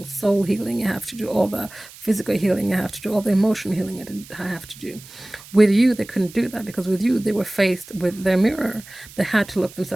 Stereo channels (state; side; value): noise; right; hiss, 19 dB below the sound